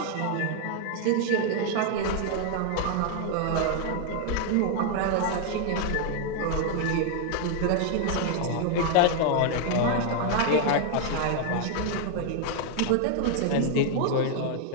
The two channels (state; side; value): different; both; correlation 0.00